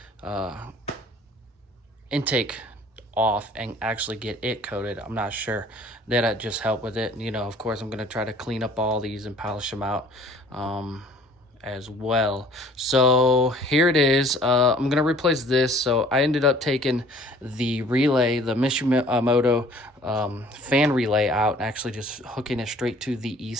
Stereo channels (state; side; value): normal; both; correlation 0.52